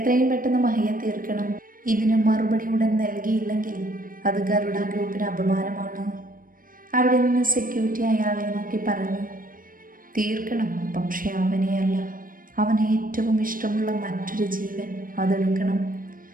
പെട്ടെന്ന് മഹിയെ തീർക്കണം. ഇതിന് മറുപടി ഉടൻ നൽകിയില്ലെങ്കിൽ അത് ഗരുഡ ഗ്രൂപ്പിന് അപമാനമാണ്. അവിടെ നിന്ന് സെക്യൂരിറ്റി അയാളെ നോക്കി പറഞ്ഞു. തീർക്കണം, പക്ഷെ അവനെയല്ല. അവന് ഏറ്റവും ഇഷ്ടമുള്ള മറ്റൊരു ജീവൻ അതെടുക്കണം.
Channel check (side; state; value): left; late; 0.40 ms